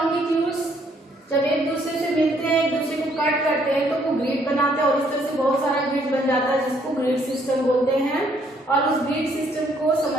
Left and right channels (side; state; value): both; normal; correlation 0.68